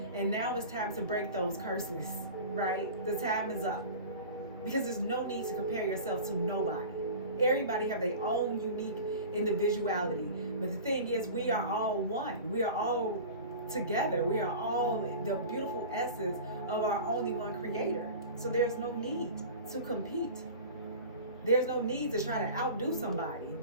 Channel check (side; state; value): both; inverted; correlation -0.36